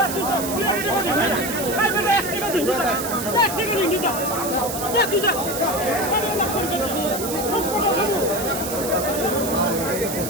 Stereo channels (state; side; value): noise; right; hiss, 6 dB below the sound